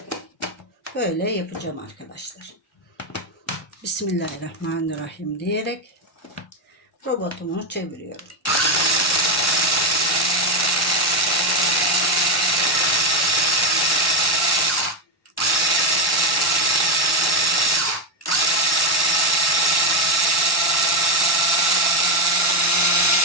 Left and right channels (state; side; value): normal; both; correlation 0.07